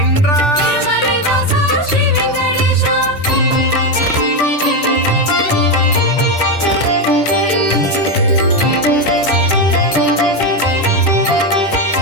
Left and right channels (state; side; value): late; right; 10 ms